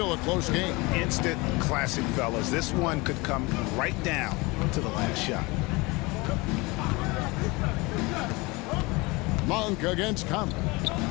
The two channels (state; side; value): quieter; right; 24.6 dB